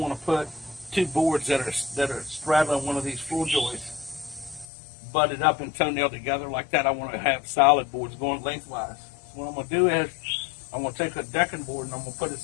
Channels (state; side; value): drops out; right; at 4.7 s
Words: put two boards that are straddling one of these floor joists butted up and toenailed together like that. I want to have solid boards going lengthwise. So what I'm going to do is I'm going to take a decking board and I'm going to put it